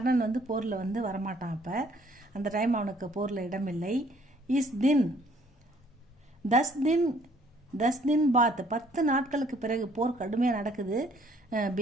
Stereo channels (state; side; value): normal; both; correlation 0.61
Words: போரில் வரமாட்டான். அப்போ அந்த டைம் அவனுக்கு போரில் இடமில்லை. இஸ் தின் 10 दिन பாத், 10 நாட்களுக்கு பிறகு போர் கடுமையாக நடக்குது.